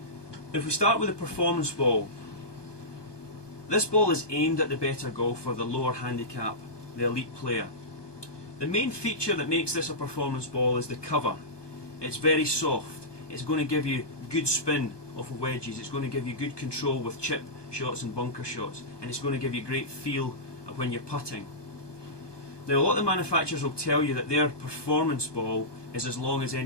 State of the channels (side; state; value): right; late; 1.2 ms